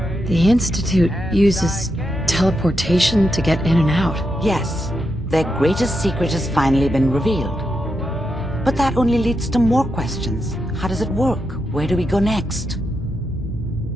The Institute uses teleportation to get in and out. Yes. Their greatest secret has finally been revealed. But that only leads to more questions. How does it work? Where do we go next?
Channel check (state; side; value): normal; both; correlation 0.85